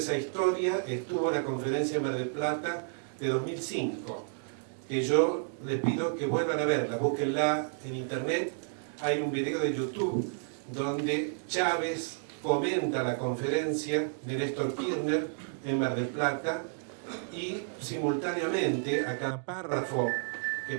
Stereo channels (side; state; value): left; silent; digital silence